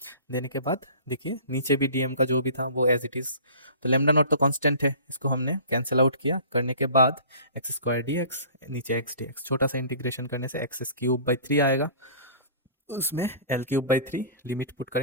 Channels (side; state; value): both; inverted; correlation -0.44